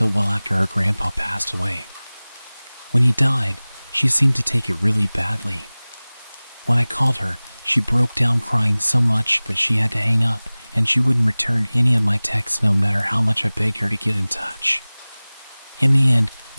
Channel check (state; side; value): inverted; both; correlation -1.00